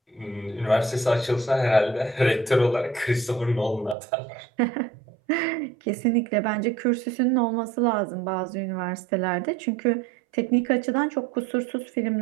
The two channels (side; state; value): left; drops out; at 4.0 s